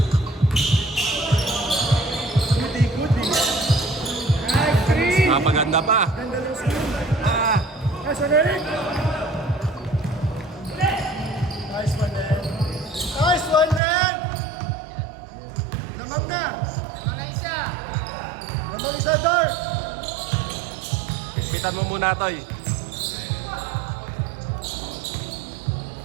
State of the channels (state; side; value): drops out; left; at 13.8 s